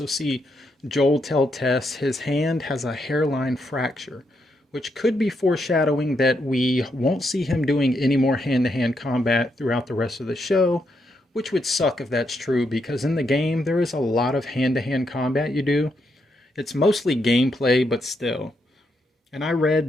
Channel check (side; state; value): both; normal; correlation 0.79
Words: see Joel tell Tess his hand has a hairline fracture, which could be foreshadowing that we won't see him doing any more hand-to-hand combat throughout the rest of the show, which would suck if that's true, because in the game, there is a lot of hand-to-hand combat you do. It's mostly gameplay, but still. And I